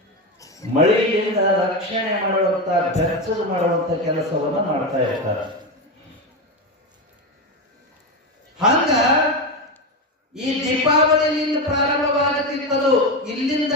ಮಳೆಯಿಂದ ರಕ್ಷಣೆ ಮಾಡುವಂತ ಬೆಚ್ಚದು ಮಾಡುವಂತ ಕೆಲಸವನ್ನ ಮಾಡ್ತಾ ಇರ್ತಾರೆ. ಹಂಗ ಈ ದೀಪಾವಳಿಯಿಂದ ಪ್ರಾರಂಭವಾಗುತ್ತಿತ್ತದು. ಇಲ್ಲಿಂದ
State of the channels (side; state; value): both; normal; correlation 0.15